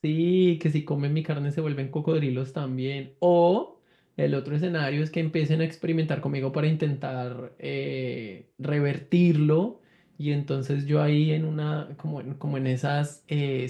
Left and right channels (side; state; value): both; identical; correlation 1.00